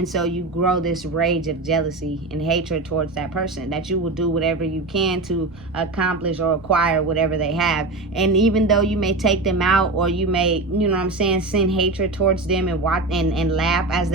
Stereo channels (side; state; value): left; quieter; 3.2 dB